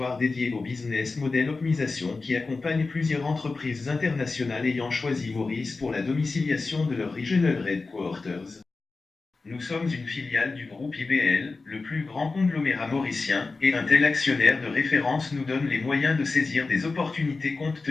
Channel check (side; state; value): right; quieter; 3.9 dB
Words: dédié au business model optimisation qui accompagne plusieurs entreprises internationales ayant choisi Maurice pour la domiciliation de leur Regional Headquarters. Nous sommes une filiale du groupe IBL, le plus grand conglomérat mauricien, et un tel actionnaire de référence nous donne les moyens de saisir des opportunités compte